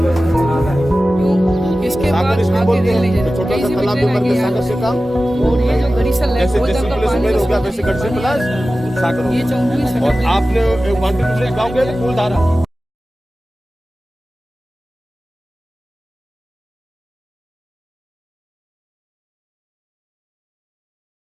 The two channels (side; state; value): both; normal; correlation 0.95